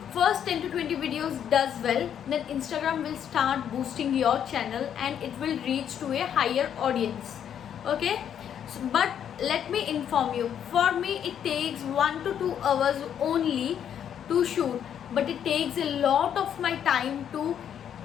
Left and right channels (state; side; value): quieter; right; 9.1 dB